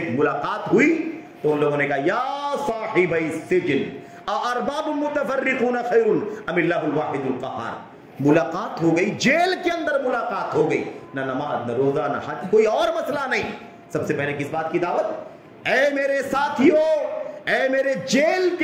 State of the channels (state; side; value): identical; both; correlation 1.00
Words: ملاقات ہوئی تو ان لوگوں نے کہا یا صاحب السجن ارباب متفرقون خیر ام اللہ الواحد القہار۔ ملاقات ہو گئی، جیل کے اندر ملاقات ہو گئی، نہ نماز نہ روزہ نہ حج، کوئی اور مسئلہ نہیں۔ سب سے پہلے کس بات کی دعوت؟ اے میرے ساتھیوں، اے میرے جیل